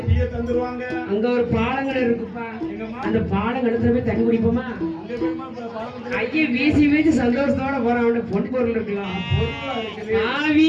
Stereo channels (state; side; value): identical; both; correlation 1.00